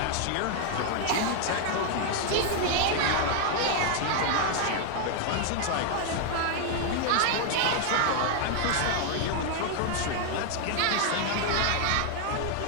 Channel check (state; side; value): different; both; correlation 0.00